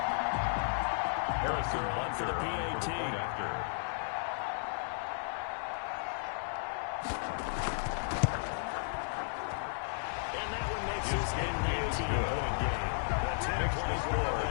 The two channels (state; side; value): silent; right; digital silence